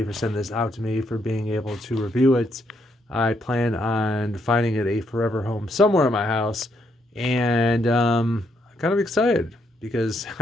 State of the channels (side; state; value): both; normal; correlation 0.76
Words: for sending this out to me, for being able to review it. I plan on finding it a forever home somewhere in my house, and I'm kind of excited because